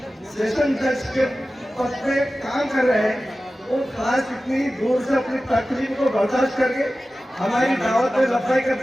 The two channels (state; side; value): normal; both; correlation 0.95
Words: सेशन जज के पद पे काम कर रहे हैं, वो खास इतनी दूर से अपनी तकलीफ को बर्दाश्त करके हमारी दावत में लफाई